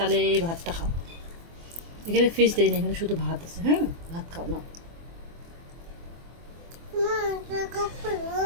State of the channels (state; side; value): late; left; 24 ms